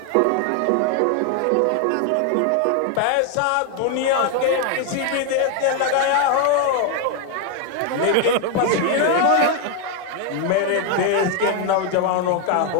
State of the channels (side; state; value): both; different; correlation 0.01